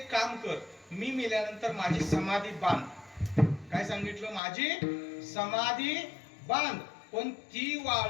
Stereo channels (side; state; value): right; drops out; at 4.4 s